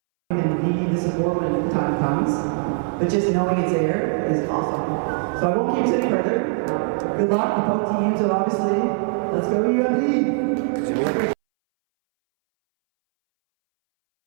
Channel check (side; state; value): left; silent; 63 dB below the other